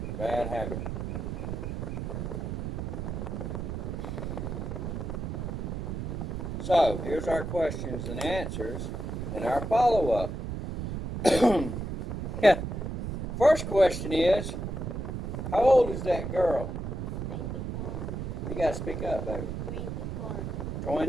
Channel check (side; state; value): right; noise; rumble, 4 dB below the sound